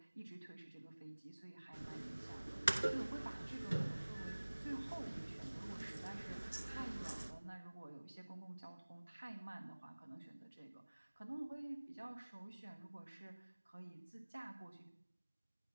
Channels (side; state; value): both; inverted; correlation -1.00